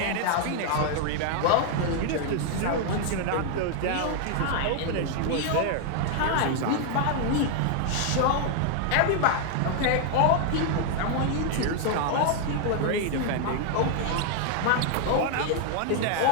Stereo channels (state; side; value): different; both; correlation 0.00